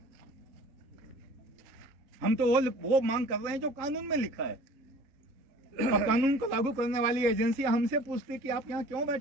हम तो वो मांग कर रहे हैं जो कानून में लिखा है। और कानून को लागू करने वाली एजेंसी हमसे पूछती कि आप यहाँ क्यों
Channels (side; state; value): left; late; 3.7 ms